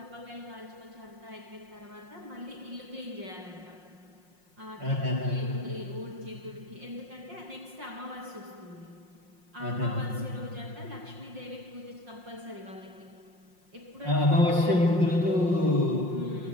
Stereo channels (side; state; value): left; late; 5.6 ms